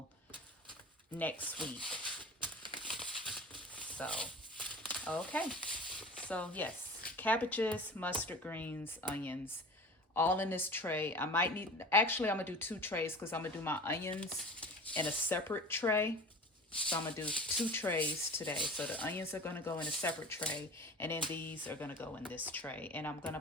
next week. So, okay. So yes, cabbages, mustard greens, onions, all in this tray. I might need, actually I'm gonna do two trays because I'm gonna do my onions in a separate tray. So I'm gonna do two trays today. So the onions are gonna go in a separate tray, and then these are gonna go in this tray. And I'm gonna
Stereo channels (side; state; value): both; normal; correlation 0.38